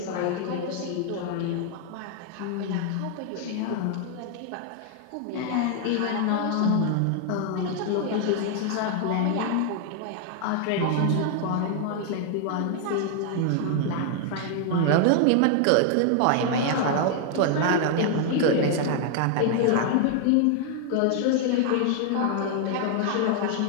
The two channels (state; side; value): different; both; correlation 0.00